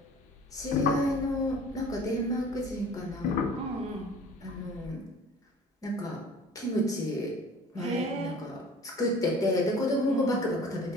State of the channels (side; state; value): both; normal; correlation 0.46